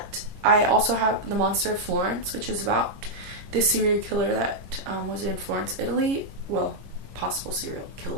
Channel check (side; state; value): left; late; 22 ms